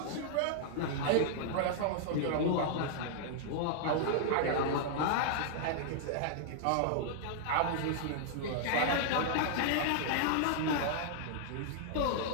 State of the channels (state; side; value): different; both; correlation -0.01